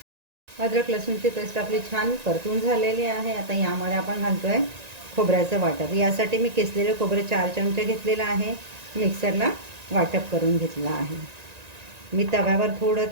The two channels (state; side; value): late; left; 1.9 ms